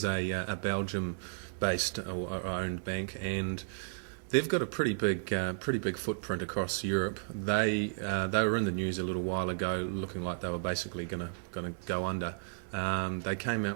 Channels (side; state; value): left; silent; 55 dB below the other